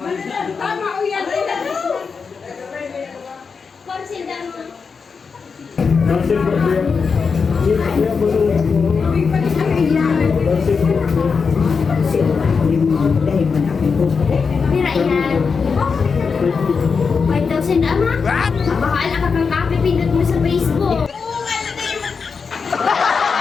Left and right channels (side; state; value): right; quieter; 5.4 dB